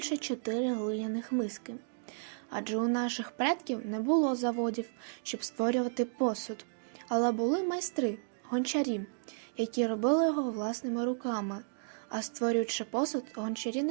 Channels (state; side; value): silent; left; digital silence